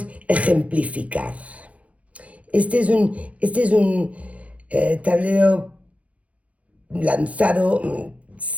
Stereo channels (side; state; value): left; late; 0.065 ms